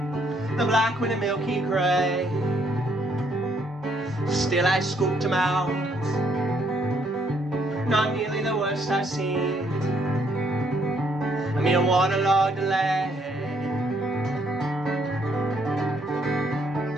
the black with a milky gray. Still I scooped him out. Not nearly the worst I've seen. A mere waterlogged delay.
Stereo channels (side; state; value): both; normal; correlation 0.70